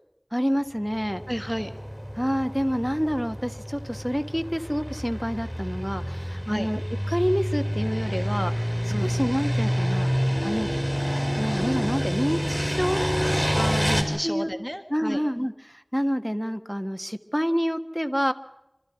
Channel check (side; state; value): both; identical; correlation 1.00